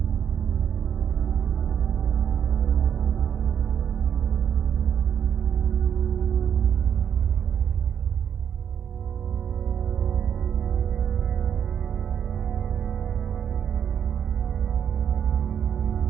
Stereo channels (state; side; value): quieter; left; 8.4 dB